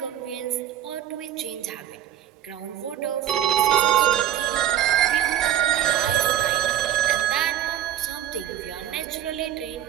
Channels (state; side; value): quieter; left; 11.1 dB